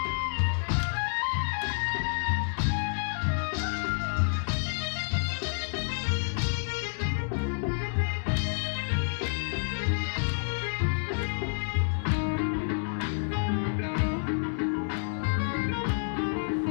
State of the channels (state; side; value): silent; right; digital silence